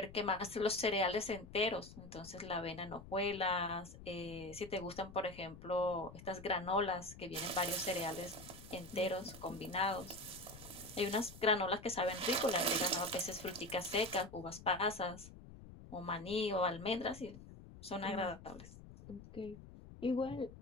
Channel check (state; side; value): noise; left; rumble, 16 dB below the sound